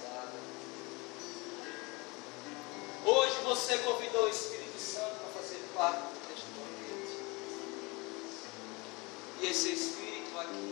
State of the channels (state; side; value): quieter; right; 26.3 dB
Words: Hoje você convidou o Espírito Santo para fazer parte deste momento. E esse Espírito aqui,